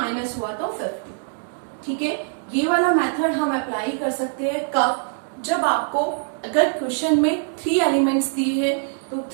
हुआ तो 50। ठीक है, ये वाला मेथड हम अप्लाई कर सकते हैं कब, जब आपको अगर क्वेश्चन में 3 एलिमेंट्स दिए हैं तो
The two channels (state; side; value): silent; left; digital silence